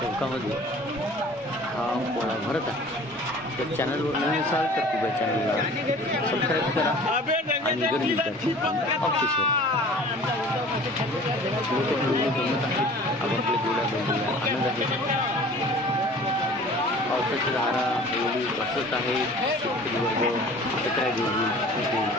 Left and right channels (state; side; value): normal; both; correlation 0.46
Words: हा पोळा भरत आहे। तर चॅनलवर नवीन असाल तर कृपया चॅनलला सबस्क्राईब करा आणि गर्दी ऑप्शन जमत आहेत। आपल्या जोड्या बघूया, आनंद आहे। पावसाची धारा एवढी बसत आहे, शेतकरी वर्ग एकत्र